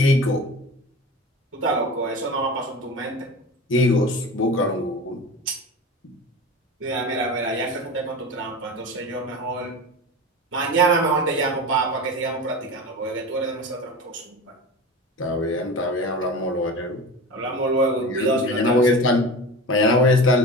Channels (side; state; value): both; normal; correlation 0.31